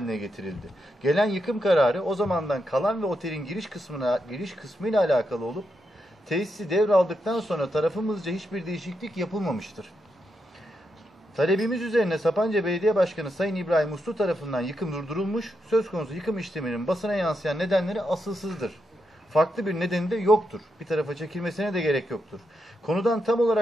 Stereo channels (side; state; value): both; normal; correlation 0.84